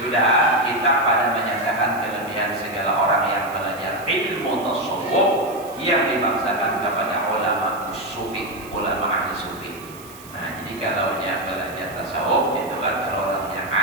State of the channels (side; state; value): right; noise; hiss, 20 dB below the sound